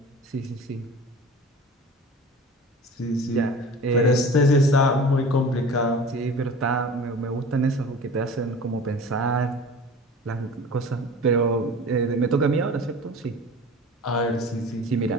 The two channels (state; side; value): normal; both; correlation 0.39